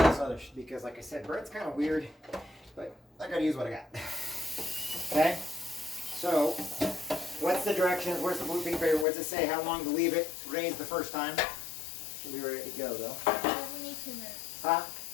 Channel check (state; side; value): drops out; right; at 9.1 s